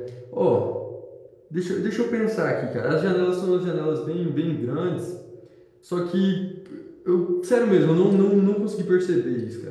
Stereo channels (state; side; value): identical; both; correlation 1.00